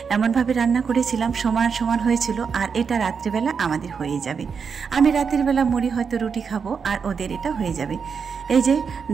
এমনভাবে রান্না করেছিলাম সমান সমান হয়েছিল, আর এটা রাত্রিবেলা আমাদের হয়ে যাবে। আমি রাতের বেলা মুড়ি হয়তো রুটি খাবো, আর ওদের এটা হয়ে যাবে। এই যে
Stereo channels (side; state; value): left; quieter; 6.0 dB